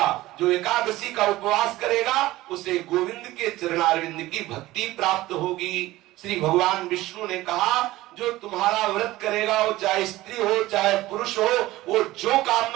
जो एकादशी का उपवास करेगा उसे गोविंद के चरणारविंद की भक्ति प्राप्त होगी। श्री भगवान विष्णु ने कहा, जो तुम्हारा व्रत करेगा वो चाहे स्त्री हो चाहे पुरुष हो, वो जो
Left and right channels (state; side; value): quieter; left; 17.4 dB